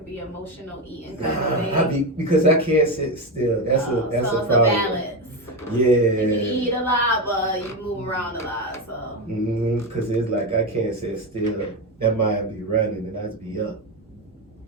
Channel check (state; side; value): normal; both; correlation 0.14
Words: be emotional eating kind of thing. Because I can't sit still. That's a so it's problem. a balance. Yeah. You eat a lot, but you move around a lot. So. Because it's like I can't sit still. That mind be running and I'd be up.